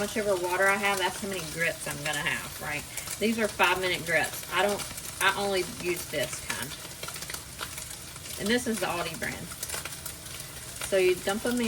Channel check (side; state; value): both; identical; correlation 1.00